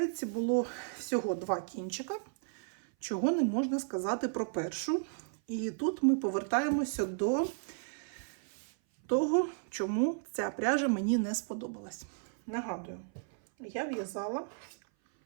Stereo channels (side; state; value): left; silent; 55 dB below the other